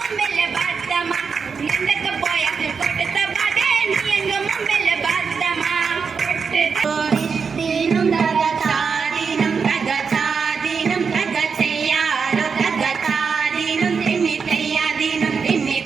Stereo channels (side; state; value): left; quieter; 5.6 dB